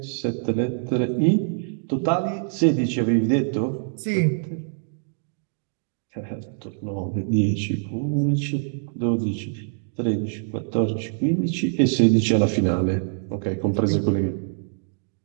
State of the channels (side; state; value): left; silent; digital silence